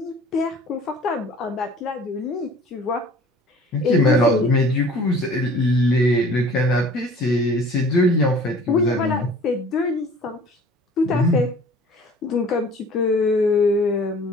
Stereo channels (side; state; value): both; normal; correlation 0.48